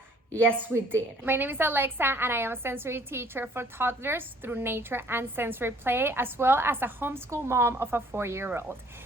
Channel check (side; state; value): both; normal; correlation 0.58